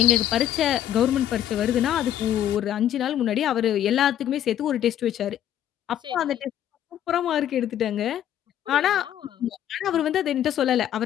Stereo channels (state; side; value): quieter; right; 11.1 dB